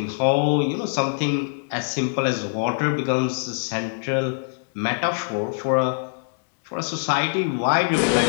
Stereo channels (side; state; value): right; silent; 63 dB below the other